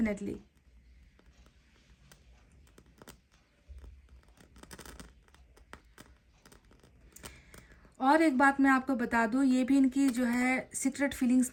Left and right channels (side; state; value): both; identical; correlation 1.00